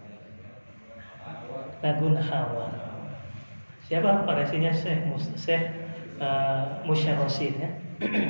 Lagun Hawa. Siapa parasinya? Syekh Musyar Rasyid ya.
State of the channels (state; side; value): inverted; both; correlation -1.00